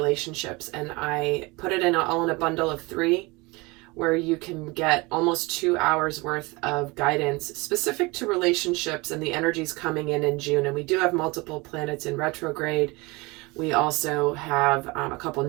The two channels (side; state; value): left; quieter; 24.6 dB